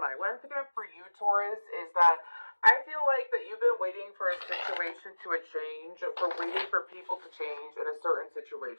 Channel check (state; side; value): inverted; both; correlation -1.00